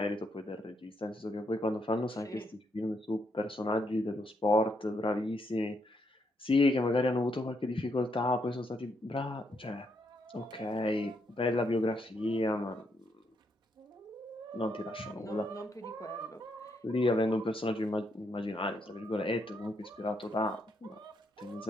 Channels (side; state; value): both; normal; correlation 0.77